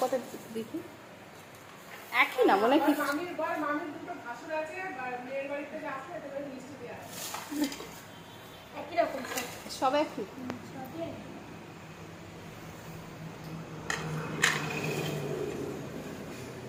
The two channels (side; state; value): both; identical; correlation 1.00